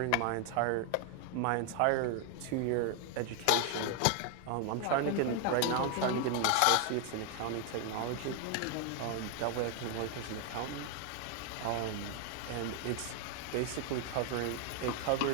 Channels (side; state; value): both; different; correlation 0.00